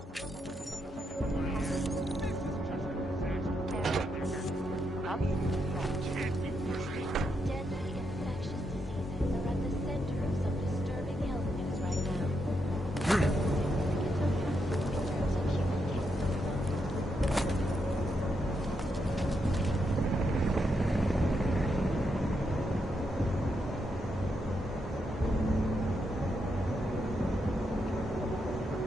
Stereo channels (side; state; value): both; normal; correlation 0.81